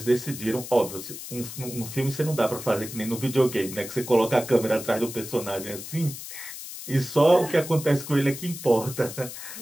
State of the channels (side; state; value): left; noise; hiss, 11 dB below the sound